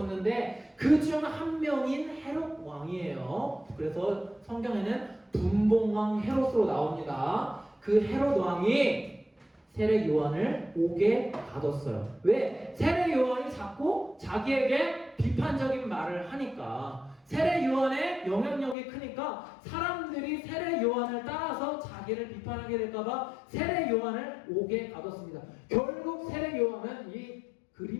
그 중 한 명인 헤롯 왕이에요. 그래서 성경에는 분봉왕 헤롯으로 나옵니다. 그 헤롯 왕이 세례 요한을 옥에 가뒀어요. 왜? 세례 요한이 자꾸 자기에게 비판적인 말을 하니까, 세례 요한의 영향력이 크니까 사람들이 세례 요한을 따라서 자기를 비판하게 될까봐 세례 요한을 옥에 가뒀습니다. 결국 세례 요한은 이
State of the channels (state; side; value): drops out; right; at 18.8 s